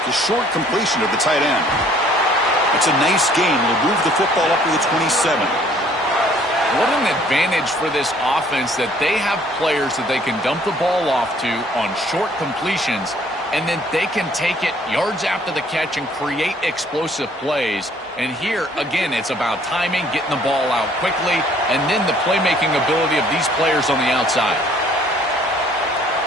The short completion of the tight end. It's a nice gain. Will move the football up to the 27. What an advantage for this offense that they have players that they can dump the ball off to on short completions, and then they can take it yards after the catch and create explosive plays. And here, again, it's about timing, getting the ball out quickly, and then the playmaking ability of these players on the outside.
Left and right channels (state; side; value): normal; both; correlation 0.59